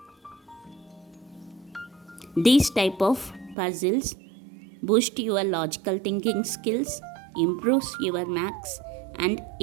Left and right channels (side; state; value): left; drops out; at 3.6 s